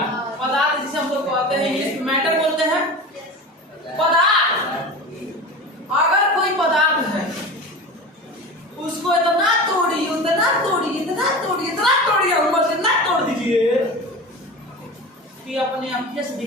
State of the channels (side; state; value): both; normal; correlation 0.31